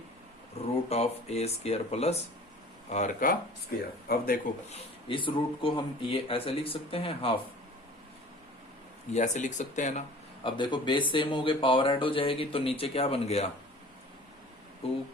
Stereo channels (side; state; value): both; normal; correlation 0.45